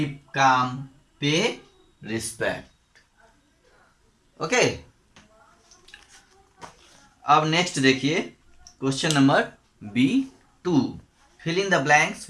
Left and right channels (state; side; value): identical; both; correlation 1.00